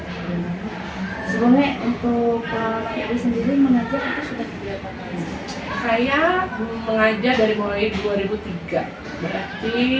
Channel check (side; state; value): both; identical; correlation 1.00